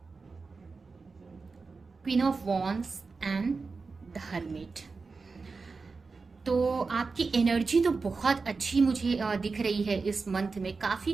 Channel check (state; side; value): quieter; left; 4.3 dB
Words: queen of wands and the hermit. तो आपकी एनर्जी तो बहुत अच्छी मुझे दिख रही है इस मंथ में।